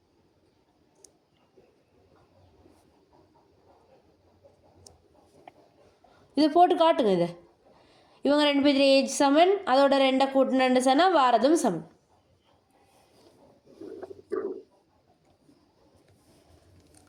இதை போட்டு காட்டுங்க. இதை இவங்க 2 பேர் ஏஜ் சமன், அதோட 2 கூட்டினு சொன்னால் வாரதும் சமன்.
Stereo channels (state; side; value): identical; both; correlation 1.00